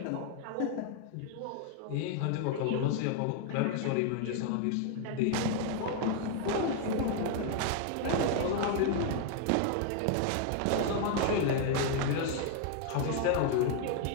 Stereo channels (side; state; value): both; different; correlation 0.00